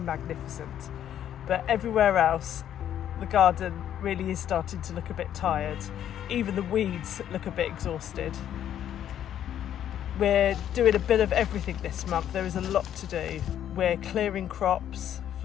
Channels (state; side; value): quieter; right; 10.5 dB